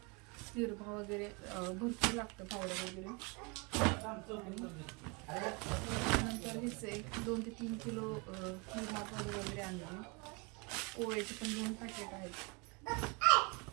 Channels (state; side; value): quieter; left; 29.6 dB